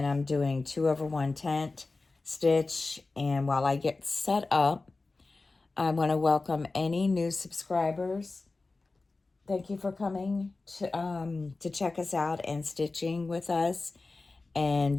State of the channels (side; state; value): right; quieter; 3.5 dB